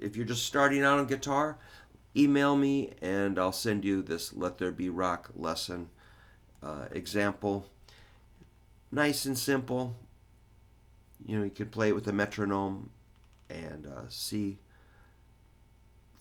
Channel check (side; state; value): both; identical; correlation 1.00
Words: if you're just starting out on guitar, email me and I'll send you this Let There Be Rock lesson example. Nice and simple. You know, you can play it with a metronome and see